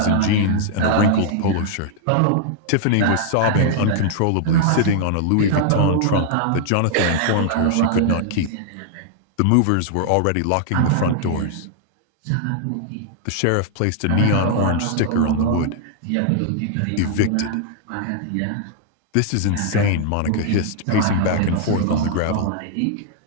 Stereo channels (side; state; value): both; different; correlation -0.01